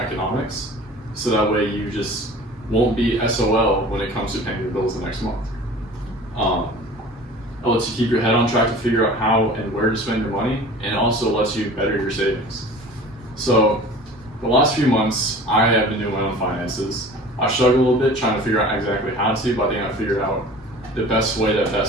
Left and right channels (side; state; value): both; normal; correlation 0.42